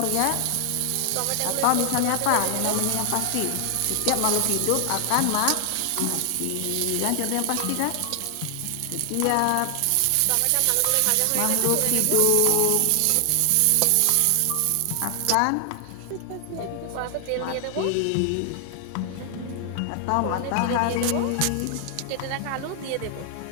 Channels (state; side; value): different; both; correlation 0.00